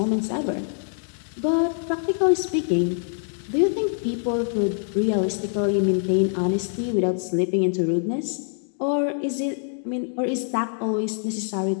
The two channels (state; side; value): silent; right; digital silence